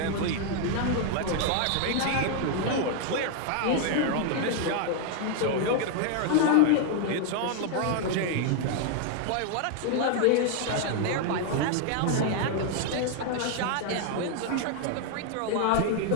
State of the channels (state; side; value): different; both; correlation 0.00